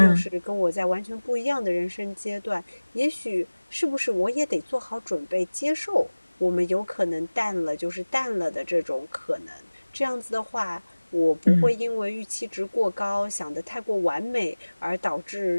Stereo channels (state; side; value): inverted; both; correlation -1.00